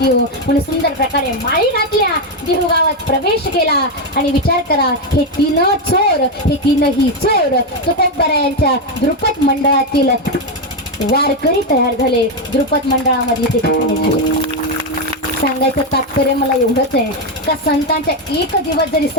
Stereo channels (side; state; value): both; normal; correlation 0.06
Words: येऊ. म्हणून सुंदर प्रकारे माळी घातल्या, देहू गावात प्रवेश केला. आणि विचार करा, हे तीन चोर, हे तीनही चोर तुकोबरायांच्या द्रुपद मंडळातील वारकरी तयार झाले. द्रुपद मंडळामध्ये ते ठिकाणी झाले. सांगायचं तात्पर्य मला एवढंच आहे का संतांच्या एक दिवस जरी